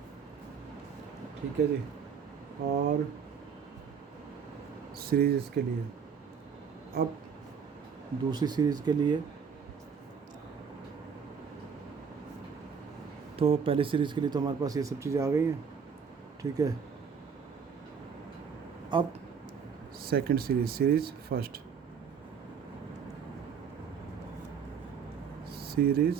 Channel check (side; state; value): left; quieter; 6.5 dB